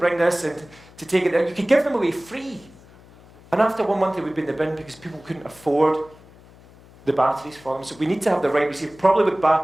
this and to take it. You could give them away free. And after 1 month, it would be in the bin because people couldn't afford the batteries for them. So we need to have the right receiver, probably with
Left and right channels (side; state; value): left; noise; hum, 24 dB below the sound